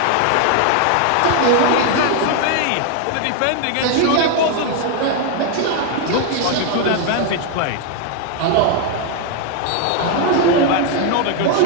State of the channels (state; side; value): different; both; correlation 0.01